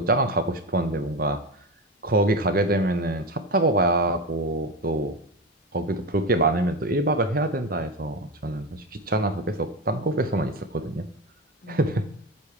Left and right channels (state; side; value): normal; both; correlation 0.20